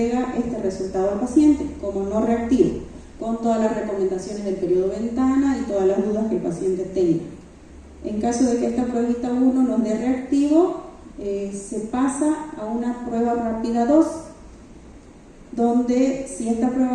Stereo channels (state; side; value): identical; both; correlation 1.00